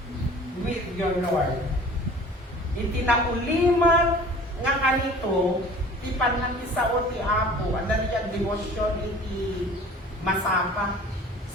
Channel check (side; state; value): both; normal; correlation 0.45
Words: with your Lord. Iti nauliman nga kanito, ti panangisao ti Apo, anda diyan devotion iti masapa.